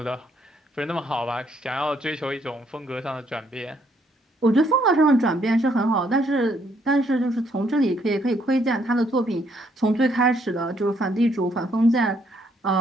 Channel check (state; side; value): normal; both; correlation 0.70